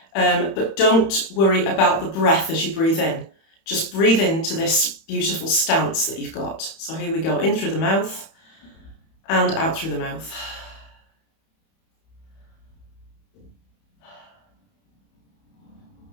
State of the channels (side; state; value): right; late; 31 ms